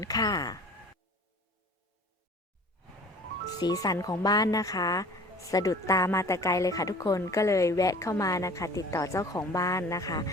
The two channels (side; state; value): both; normal; correlation 0.46